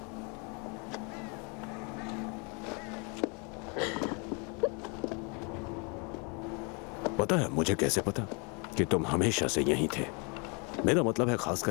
पता है मुझे कैसे पता कि तुम हमेशा से यहीं थे? मेरा मतलब है खास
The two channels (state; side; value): quieter; right; 33.2 dB